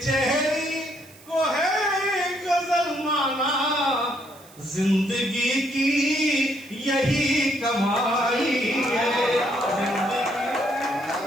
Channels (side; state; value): right; noise; hiss, 24 dB below the sound